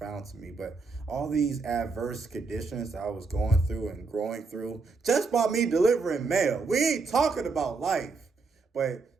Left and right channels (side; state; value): left; quieter; 4.2 dB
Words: to me. But all these adverse conditions that I was going through and growing through, just by me delivering mail, we ain't talking about life,